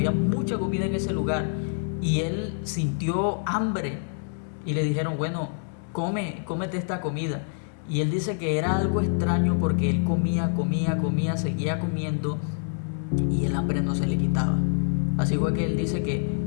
ese lugar. y él sintió hambre y le dijeron, bueno, cómete esta comida. Y él dice que era algo extraño porque él comía, seguía comiendo y el hambre no se le quitaba. Así fue que él dice que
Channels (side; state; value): right; silent; 61 dB below the other